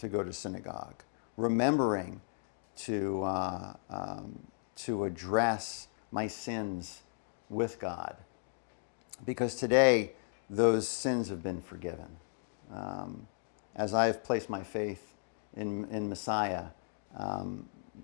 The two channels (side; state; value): right; silent; digital silence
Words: go to synagogue, remembering to address my sins with God, because today those sins have been forgiven. As I have placed my faith in Messiah,